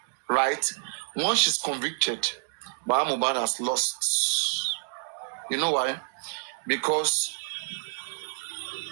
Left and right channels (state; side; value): silent; left; digital silence